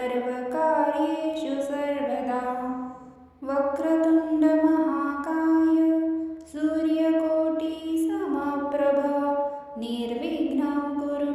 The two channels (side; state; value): both; identical; correlation 1.00